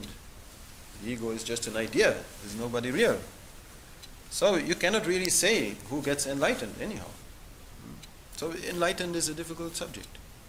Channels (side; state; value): both; identical; correlation 1.00